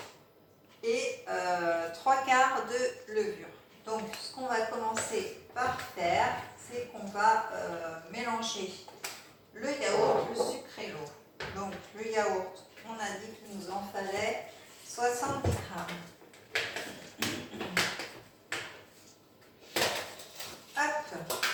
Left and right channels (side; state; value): both; identical; correlation 1.00